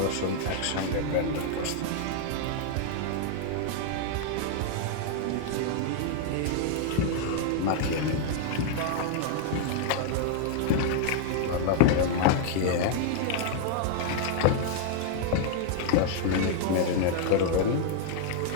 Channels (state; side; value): different; both; correlation 0.00